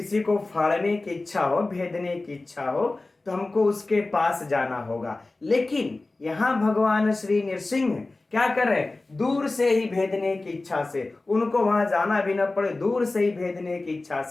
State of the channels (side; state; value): right; quieter; 3.2 dB